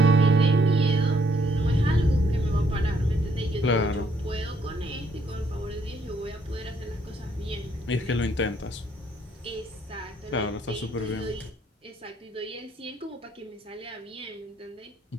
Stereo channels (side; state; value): both; normal; correlation 0.69